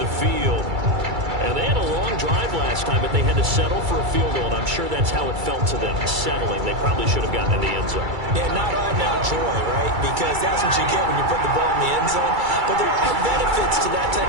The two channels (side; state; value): left; late; 2.3 ms